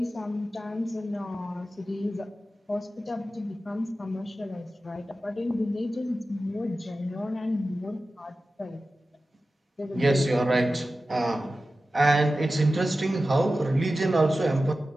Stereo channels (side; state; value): both; normal; correlation 0.94